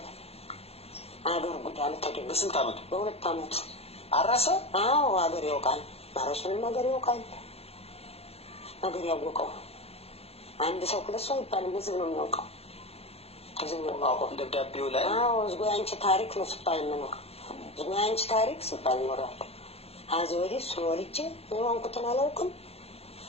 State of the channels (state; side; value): late; right; 0.29 ms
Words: አገር ጉዳይ ተደረገ። በስንት ዓመቱ? በ2 ዓመቱ አረሰ። አዎ አገር ያውቃል። ማረሱንም አገር ያውቃል። አገር ያወቀው አንድ ሰው 2 ሰው ይባል ህዝብ ነው የሚያውቀው። ህዝብ ነው የሚያውቀው። ደብዳቤው ላይ አዎ ዝጎ አንቺ ታሪክ ነው ሲባል ነው። ዝጎ አንቺ ታሪክ ሲባል ነው። አዚ ወዲህ ሶልቼ የሆንኩትን አላውቅም።